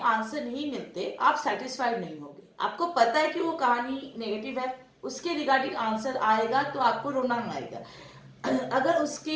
आंसर नहीं मिलते आप सेटिस्फाइड नहीं होगे। आपको पता है कि वो कहानी नेगेटिव है, उसके रिगार्डिंग आंसर आएगा तो आपको रोना आएगा। अगर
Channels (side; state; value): both; identical; correlation 1.00